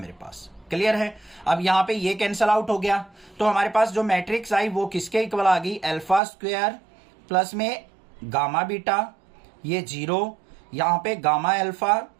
पास। क्लियर है। अब यहाँ पे ये कैंसल आउट हो गया, तो हमारे पास जो मैट्रिक्स आई वो किसके इक्वल आ गई, अल्फा स्क्वायर प्लस में गामा बीटा, ये 0। यहाँ पे गामा अल्फा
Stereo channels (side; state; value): left; drops out; at 6.2 s